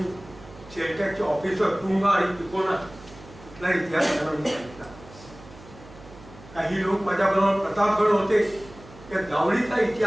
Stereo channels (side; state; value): right; noise; hum, 19 dB below the sound